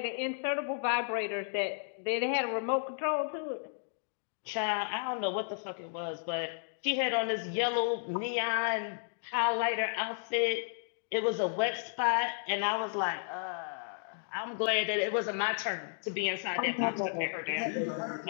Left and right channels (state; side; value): silent; right; digital silence